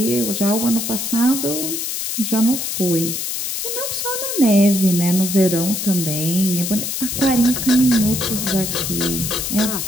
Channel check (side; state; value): left; noise; hiss, 3 dB below the sound